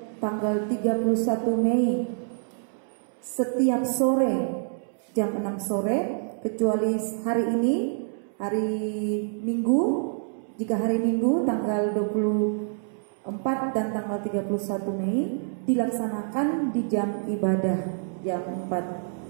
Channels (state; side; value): silent; left; 60 dB below the other